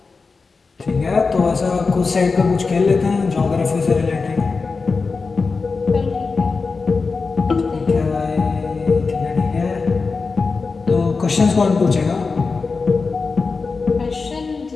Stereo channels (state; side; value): quieter; right; 4.4 dB